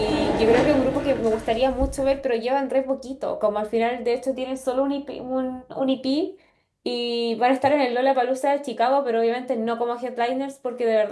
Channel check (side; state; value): both; identical; correlation 1.00